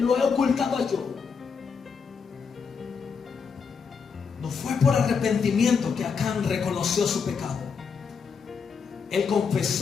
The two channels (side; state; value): right; quieter; 5.9 dB